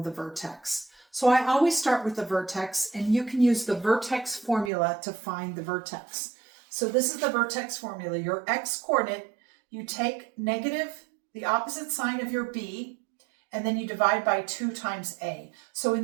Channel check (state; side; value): drops out; left; at 4.7 s